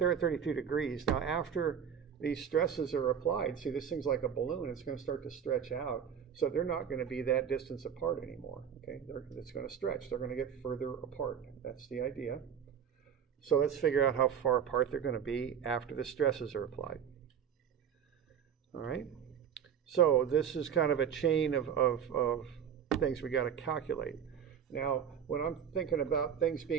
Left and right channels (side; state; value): left; quieter; 8.2 dB